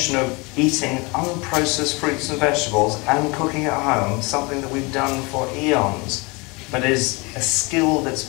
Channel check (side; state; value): right; quieter; 27.1 dB